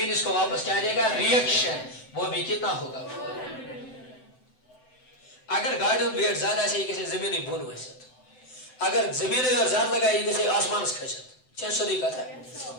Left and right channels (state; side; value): late; right; 7.9 ms